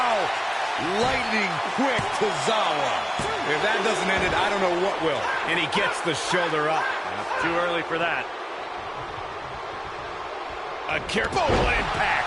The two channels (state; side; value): identical; both; correlation 1.00